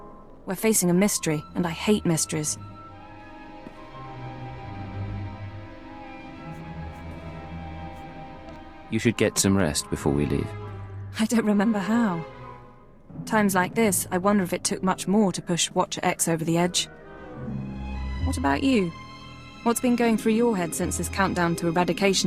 We're facing a mystery, and I hate mysteries. You should get some rest before we leave. I don't remember how. Times like this, I wonder if it took much more to push Watcher X over the edge. What about you? What's been going through your head since this countdown to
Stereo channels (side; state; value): both; identical; correlation 1.00